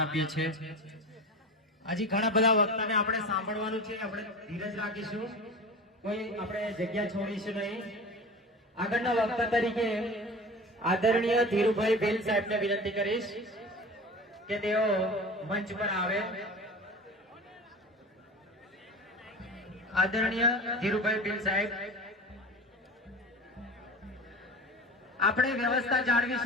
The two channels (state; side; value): normal; both; correlation 0.33